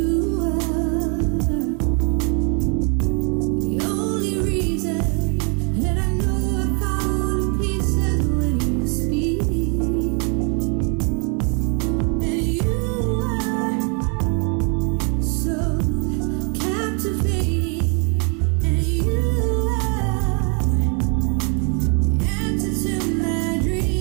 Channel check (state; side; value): quieter; left; 37.6 dB